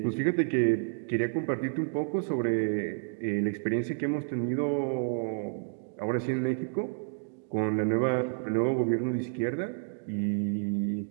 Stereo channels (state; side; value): silent; left; digital silence